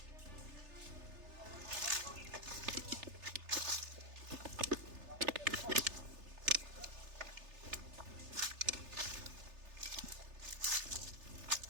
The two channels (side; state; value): left; late; 3.3 ms